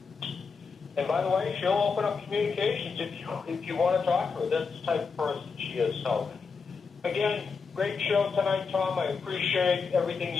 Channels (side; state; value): right; quieter; 5.1 dB